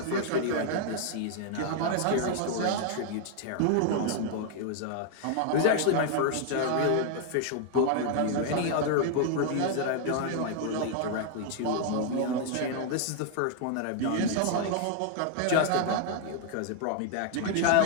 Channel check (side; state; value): both; different; correlation 0.00